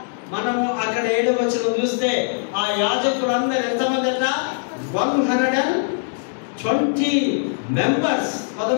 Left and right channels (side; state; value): right; silent; digital silence